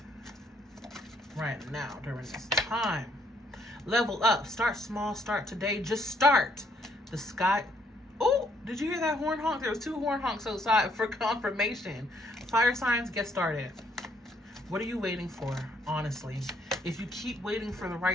right now during this time. Level up. Start small. Start today. Just start. The sky. Oh, did you hear that horn honk? There was 2 horn honks outside for confirmation. Fire signs, get started. What are you waiting for, honestly? If you keep waiting for the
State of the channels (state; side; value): normal; both; correlation 0.68